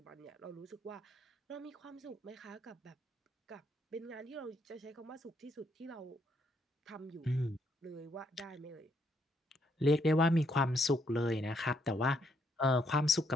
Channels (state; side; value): normal; both; correlation 0.73